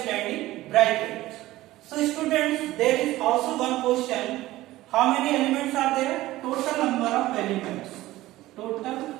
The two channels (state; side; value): quieter; left; 16.7 dB